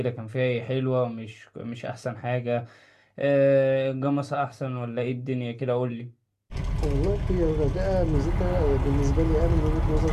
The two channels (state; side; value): identical; both; correlation 1.00